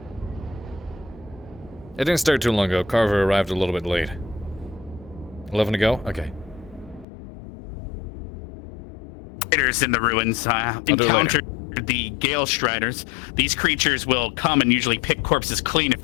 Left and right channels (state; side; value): drops out; right; at 7.1 s